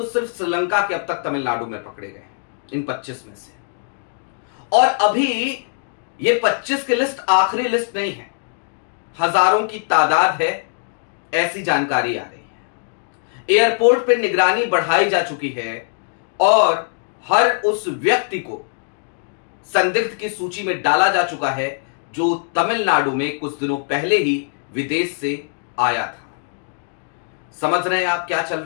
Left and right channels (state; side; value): silent; right; digital silence